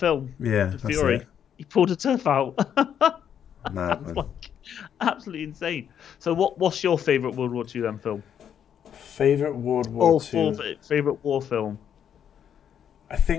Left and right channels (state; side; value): quieter; right; 8.9 dB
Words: Yeah, that's Fury. it. He pulled a tooth out. Mad, man. Absolutely insane. So, what's your favourite World War II then film? Favorite World War II. Favorite war film. I